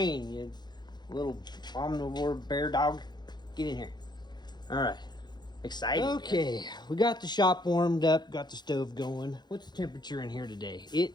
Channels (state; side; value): late; right; 0.21 ms